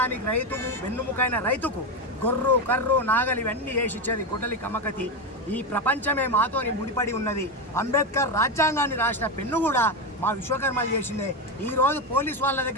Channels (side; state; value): both; normal; correlation 0.12